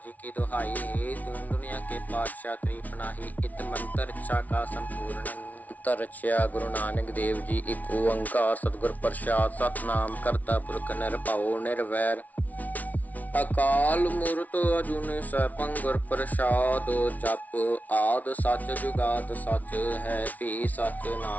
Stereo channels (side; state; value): right; late; 0.074 ms